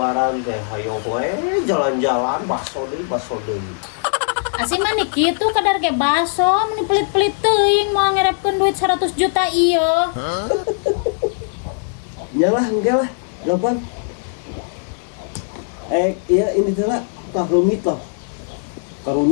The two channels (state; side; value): silent; right; 66 dB below the other